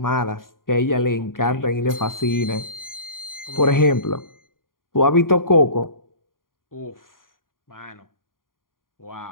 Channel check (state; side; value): late; right; 0.91 ms